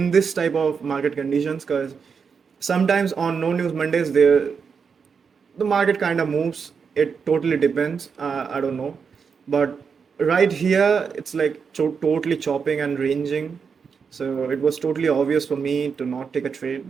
this type of market conditions, because sometimes on no news Mondays the market kind of moves. It totally depends. I don't know, but right here it's like totally chopping and ranging. So it was totally obvious for me to not take a trade,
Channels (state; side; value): quieter; left; 6.0 dB